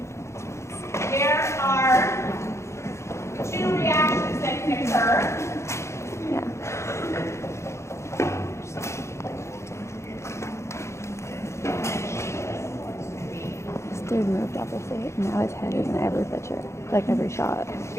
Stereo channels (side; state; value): right; late; 0.14 ms